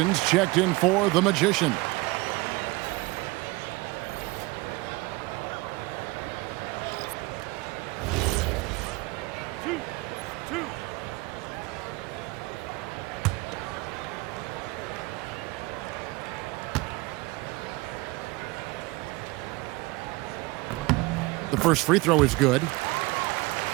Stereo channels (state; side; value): quieter; left; 23.0 dB